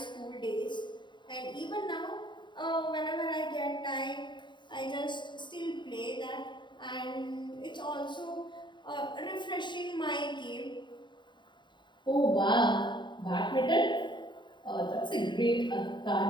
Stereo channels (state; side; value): late; right; 0.23 ms